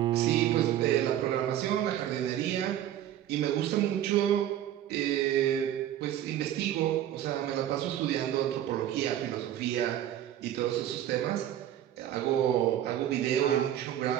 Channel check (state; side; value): quieter; left; 11.6 dB